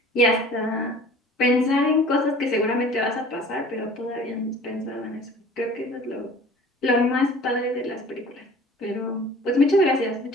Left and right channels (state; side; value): normal; both; correlation 0.46